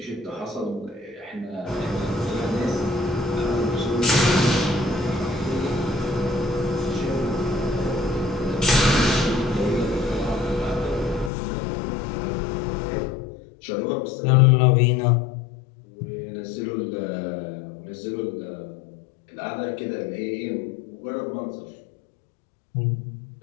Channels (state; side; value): drops out; right; at 11.3 s